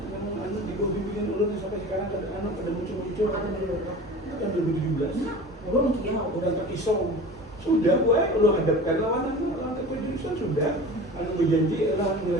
di bawah bimbingan ulun sampai sekarang pada muncul-muncul. Ada dulu. Kan 2017. Belum Kiau. Bukan terpisau. Sudah gue lu hadapkan lawan keputusan sudah. Anu berjanji adalah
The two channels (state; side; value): normal; both; correlation 0.37